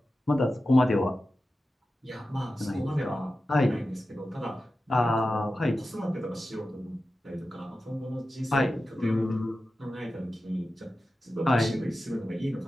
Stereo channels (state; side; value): normal; both; correlation 0.93